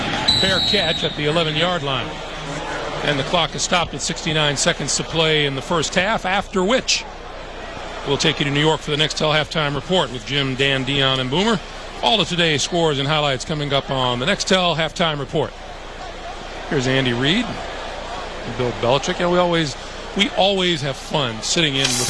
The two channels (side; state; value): both; identical; correlation 1.00